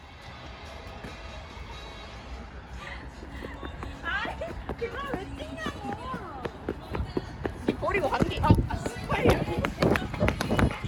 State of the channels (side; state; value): both; identical; correlation 1.00